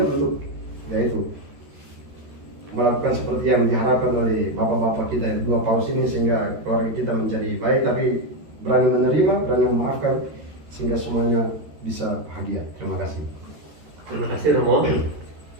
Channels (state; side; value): late; left; 13 ms